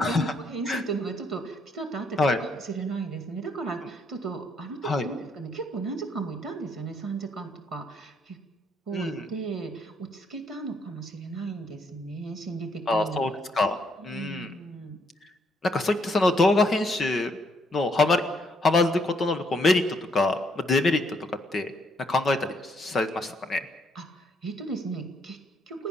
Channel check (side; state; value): both; normal; correlation 0.72